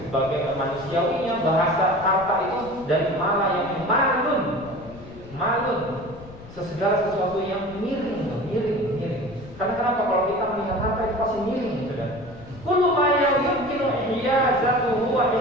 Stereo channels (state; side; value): noise; left; rumble, 18 dB below the sound